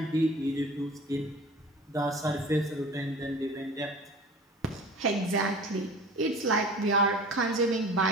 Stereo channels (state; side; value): normal; both; correlation 0.41